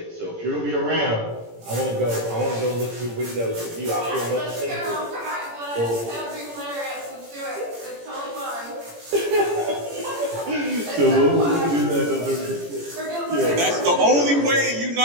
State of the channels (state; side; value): late; left; 17 ms